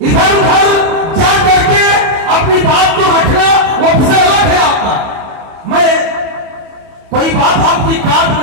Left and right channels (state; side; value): late; left; 31 ms